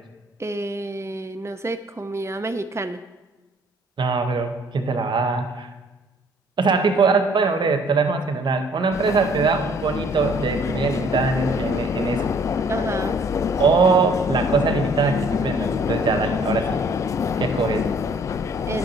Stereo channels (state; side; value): normal; both; correlation 0.59